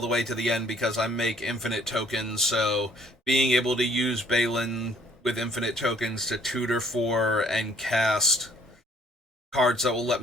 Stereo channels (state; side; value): normal; both; correlation 0.61